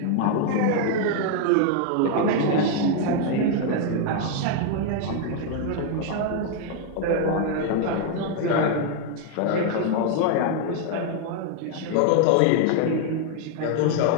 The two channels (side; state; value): both; different; correlation 0.00